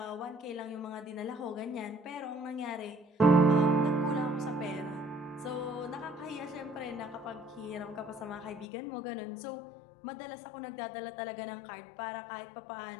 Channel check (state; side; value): drops out; right; at 8.7 s